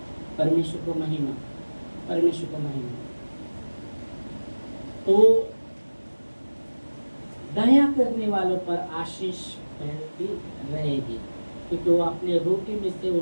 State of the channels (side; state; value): both; inverted; correlation -1.00